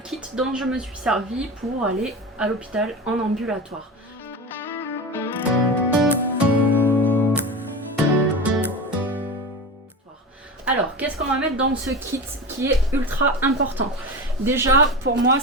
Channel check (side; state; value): both; normal; correlation 0.26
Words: dont je me suis servi pour aller à l'hôpital en ambulatoire. Alors, qu'est-ce qu'on va mettre dans ce kit qui est ultra important? Déjà, pour moi,